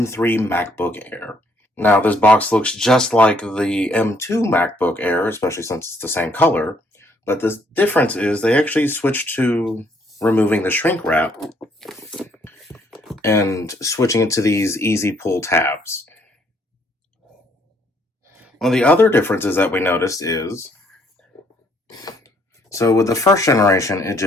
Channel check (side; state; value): both; normal; correlation 0.67